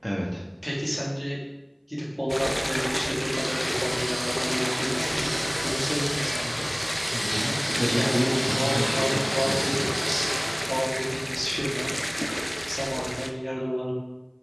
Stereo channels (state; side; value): identical; both; correlation 1.00